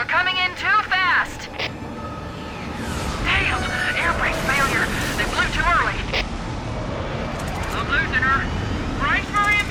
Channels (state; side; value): identical; both; correlation 1.00